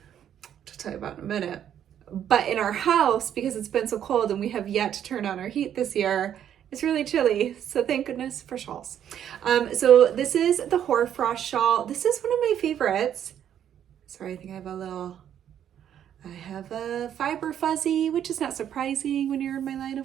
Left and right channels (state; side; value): quieter; left; 9.8 dB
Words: which I'll tell you about in a minute. But in our house, because it's been so cold and we have yet to turn on our heat this year, it's really chilly. So thank goodness for shawls. So this is the hoarfrost shawl. This is one of my favorites. Sorry, I think I have a fiber fuzzy, which is not surprising when you're in my line